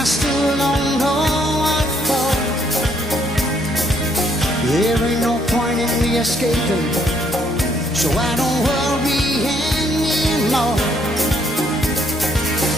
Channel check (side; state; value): both; normal; correlation 0.69